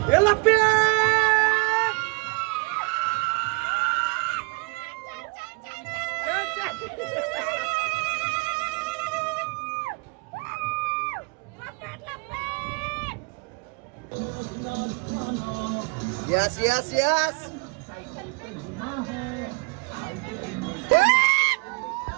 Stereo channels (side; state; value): left; quieter; 29.6 dB